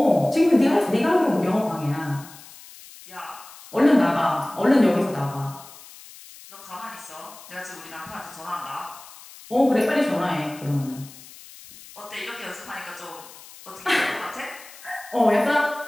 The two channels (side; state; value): left; noise; hiss, 19 dB below the sound